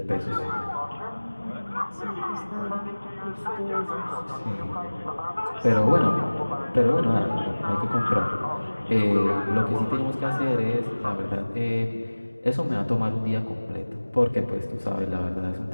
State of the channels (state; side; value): inverted; both; correlation -1.00